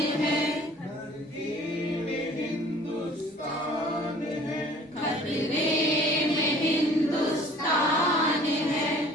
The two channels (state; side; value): normal; both; correlation 0.51